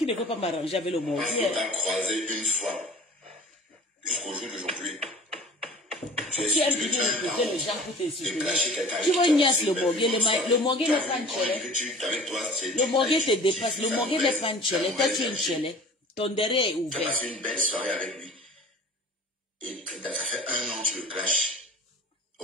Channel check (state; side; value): normal; both; correlation 0.43